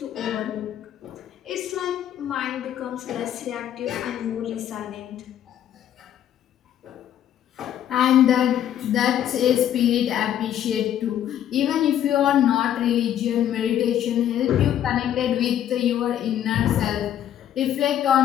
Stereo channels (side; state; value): right; quieter; 10.7 dB